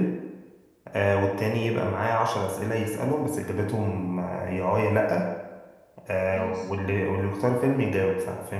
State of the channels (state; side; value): identical; both; correlation 1.00